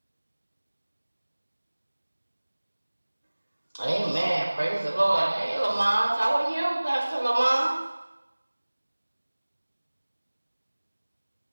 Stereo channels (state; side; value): inverted; both; correlation -1.00